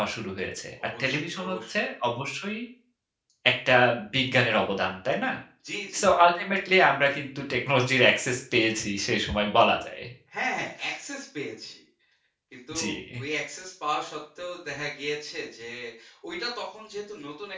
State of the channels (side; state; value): both; identical; correlation 1.00